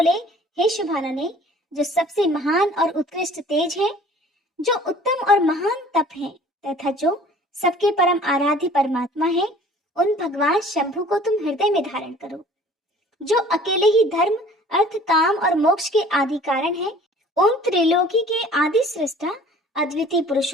हे शुभानने, जो सबसे महान और उत्कृष्ट तेज है, जो उत्तम और महान तप है तथा जो सबके परम आराध्य परमात्मा है, उन भगवान शंभु को तुम हृदय में धारण करो। जो अकेले ही धर्म, अर्थ, काम और मोक्ष के आदि कारण है, उन त्रिलोकी के आदि सृष्टा अद्वितीय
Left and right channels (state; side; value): normal; both; correlation 0.50